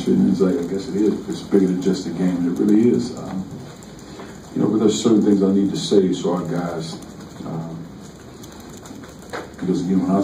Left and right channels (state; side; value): identical; both; correlation 1.00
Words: and it's like, I guess it is. It's bigger than just a game, and it really is. But there's certain things I need to say to our guys. Because again, when I